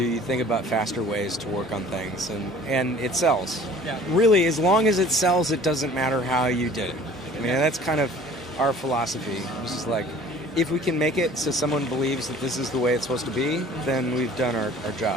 you think about faster ways to work on things, and it sells. Yeah. Really, as long as it sells, it doesn't matter how you did it. I mean, that's kind of our philosophy, which is like, if we can make it so someone believes that this is the way it's supposed to be, then we've done our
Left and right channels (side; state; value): both; normal; correlation 0.49